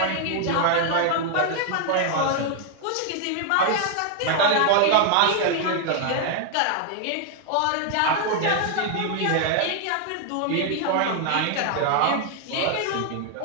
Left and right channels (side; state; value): both; different; correlation 0.00